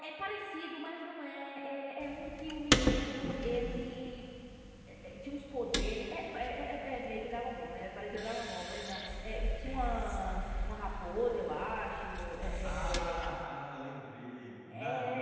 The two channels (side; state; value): both; identical; correlation 1.00